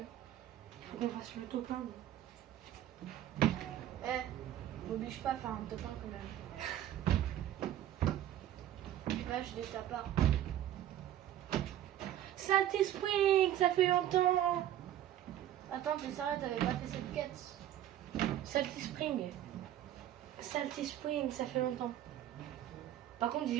Il faut qu'on fasse le top 1. M'oblige pas à faire un top 1 quand même. Là, je ta part. Salty Spring, ça fait longtemps. Attends, t'es sérieux, t'avais pas fait cette quête? Salty Spring. Salty Spring, ça fait longtemps. Par contre,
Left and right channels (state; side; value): quieter; left; 12.1 dB